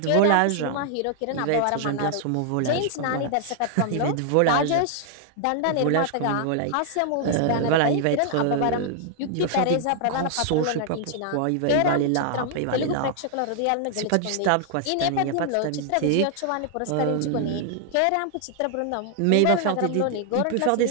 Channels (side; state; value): both; different; correlation 0.00